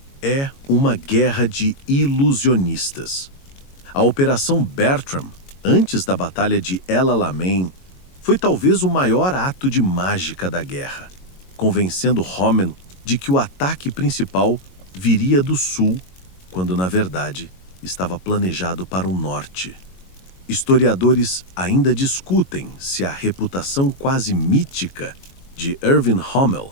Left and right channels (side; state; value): right; late; 22 ms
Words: É uma guerra de ilusionistas. A Operação Bertram, antes da Batalha de El Alamein, foi talvez o maior ato de mágica da guerra, convencendo Rommel de que o ataque principal viria do sul, quando, na verdade, estava planejado para o norte. Historiadores ainda discutem se a reputação quase mítica de Erwin